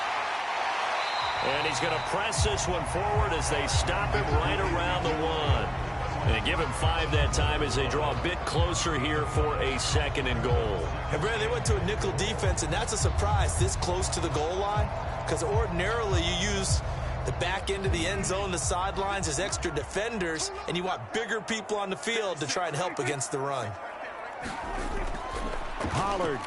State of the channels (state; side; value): identical; both; correlation 1.00